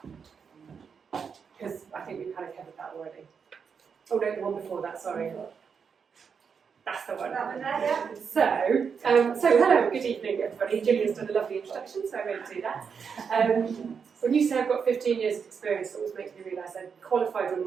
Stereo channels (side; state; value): left; quieter; 6.3 dB